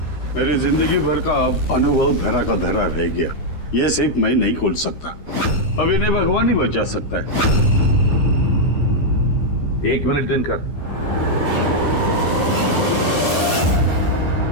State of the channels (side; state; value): right; late; 13 ms